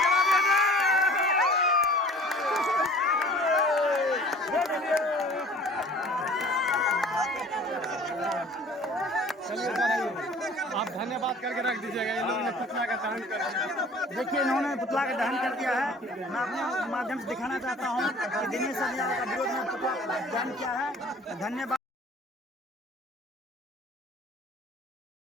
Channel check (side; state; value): both; normal; correlation 0.48